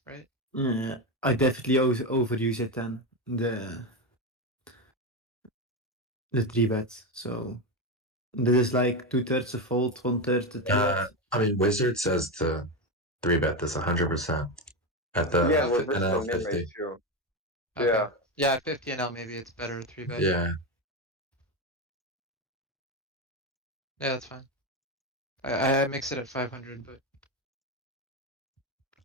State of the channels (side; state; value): both; normal; correlation 0.13